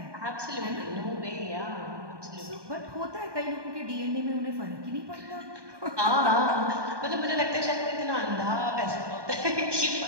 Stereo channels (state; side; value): late; left; 1.2 ms